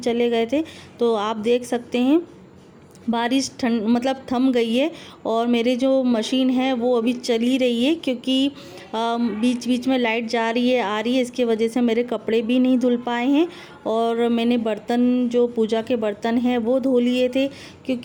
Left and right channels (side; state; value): both; identical; correlation 1.00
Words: गए थे। तो आप देख सकते हैं बारिश थम गई है और मेरी जो मशीन है वो अभी चली रही है, क्योंकि बीच बीच में लाइट जा रही है आ रही है, इसके वजह से मेरे कपड़े भी नहीं धुल पाए हैं। और मैंने बर्तन, जो पूजा के बर्तन हैं वो धो लिए थे,